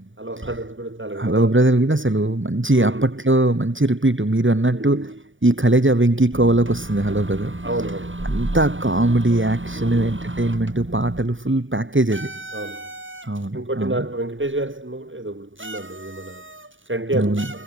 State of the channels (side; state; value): left; late; 0.57 ms